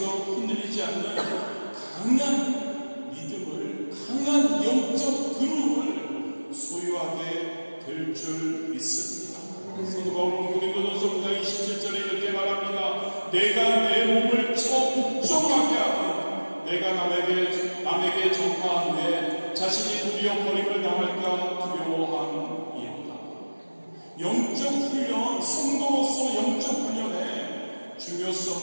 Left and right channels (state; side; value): inverted; both; correlation -1.00